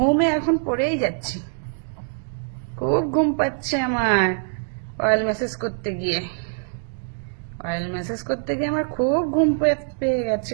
এখন পড়েই যাচ্ছি। খুব ঘুম পাচ্ছে আমার অয়েল ম্যাসেজ করতে গিয়ে। অয়েল ম্যাসেজ করতে গিয়ে আমার খুব ঘুম পেয়ে গেছে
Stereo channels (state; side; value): silent; left; digital silence